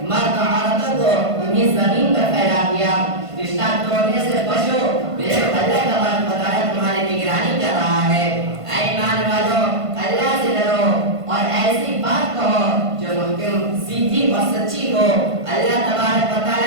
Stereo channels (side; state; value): left; late; 1.5 ms